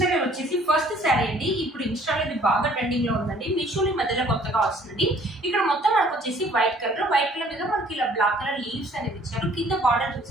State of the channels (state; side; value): normal; both; correlation 0.57